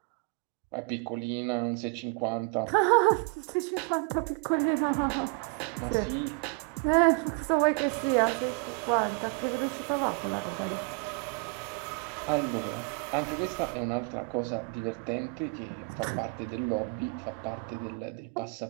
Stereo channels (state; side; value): quieter; left; 33.2 dB